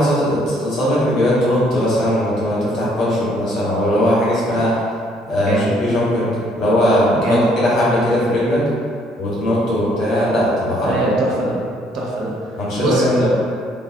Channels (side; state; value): both; normal; correlation 0.66